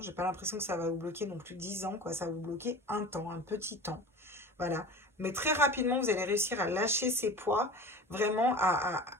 j'ai pas l'impression que ça va vous bloquer non plus 10 ans, quoi, ça va vous bloquer un temps, un petit temps, voilà. Mais très rapidement, vous allez réussir à lâcher ces poids, vraiment à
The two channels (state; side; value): normal; both; correlation 0.36